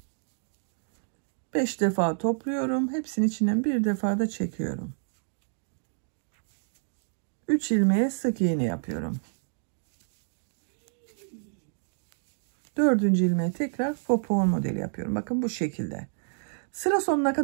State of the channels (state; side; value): silent; left; digital silence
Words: 5 defa topluyorum. Hepsinin içinden bir defa da çekiyorum. 3 ilmeğe sık iğne yapıyorum. 4. ilmeğe tekrar popcorn modeli yapıyorum. Bakın bu şekilde. Sıra sonuna